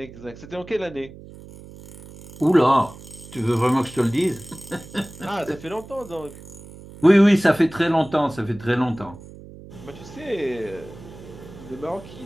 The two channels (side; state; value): right; noise; hum, 17 dB below the sound